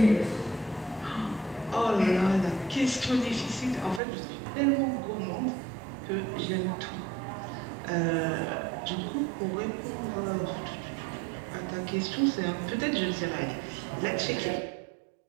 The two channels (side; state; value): left; drops out; at 4.0 s